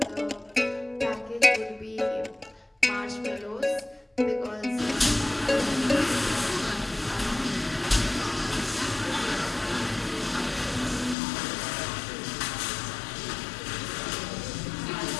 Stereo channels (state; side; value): drops out; right; at 11.2 s